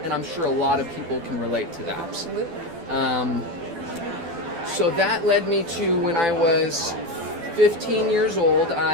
and I'm sure a lot of people can relate to that. Absolutely. So that led me to when I was 15 years old,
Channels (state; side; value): late; left; 12 ms